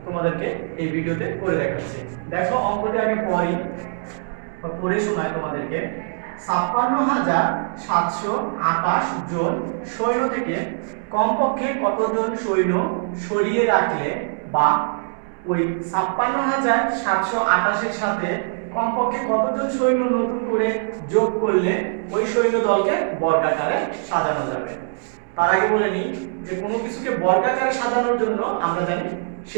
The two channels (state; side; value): silent; left; digital silence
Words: তোমাদেরকে এই ভিডিওতে করে দেখাচ্ছি। দেখো অঙ্কটি আগে পড়ে শোনাই তোমাদেরকে। ৫৬,৭২৮ জন সৈন্য থেকে কমপক্ষে কতজন সৈন্য সরিয়ে রাখলে বা ওই ৫৬,৭২৮ এর সাথে কমপক্ষে কতজন সৈন্য নতুন করে যোগ করলে ওই সৈন্য দলকে বর্গাকারে সাজানো যাবে। তার আগে বলে নিই যে কোনো কিছুকে বর্গাকারে সাজানোর জন্য আমরা জানি